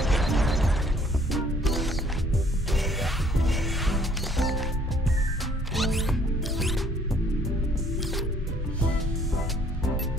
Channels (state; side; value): normal; both; correlation 0.60